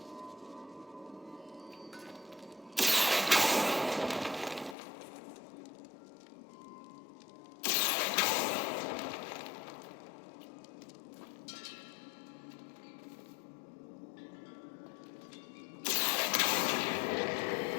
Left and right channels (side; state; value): right; drops out; at 4.8 s